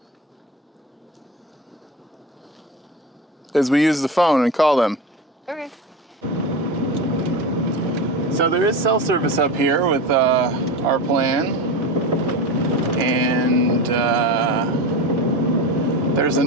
Is we use the phone and call them. Okay. So there is cell service up here with our plan, and there's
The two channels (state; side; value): normal; both; correlation 0.25